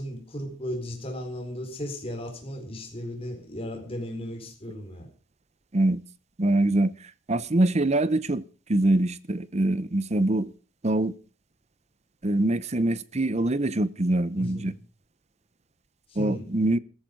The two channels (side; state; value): both; normal; correlation 0.78